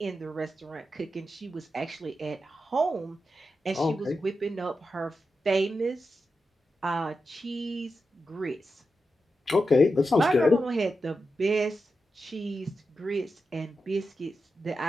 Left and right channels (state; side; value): normal; both; correlation 0.89